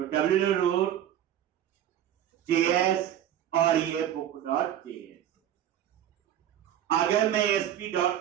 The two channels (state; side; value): quieter; left; 10.9 dB